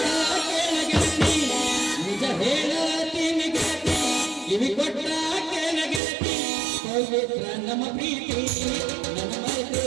ಕೇಳ ಗೆಳತಿ, ನಿಜ ಹೇಳತೀನಿ ಗೆಳತಿ ಕಿವಿ ಕೊಟ್ಟ ಕೇಳ ಗೆಳತಿ, ಪವಿತ್ರ ನಮ್ಮ ಪ್ರೀತಿ ನನ್ನ ಮರೆತು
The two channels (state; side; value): drops out; left; at 6.0 s